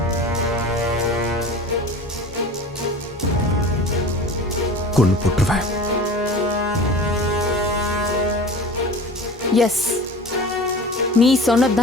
கொண்டு போட்டுருவேன். எஸ், நீ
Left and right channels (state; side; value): normal; both; correlation 0.37